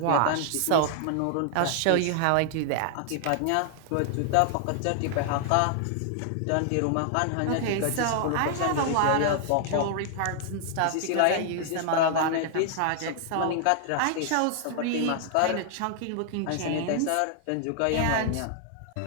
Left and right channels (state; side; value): different; both; correlation 0.00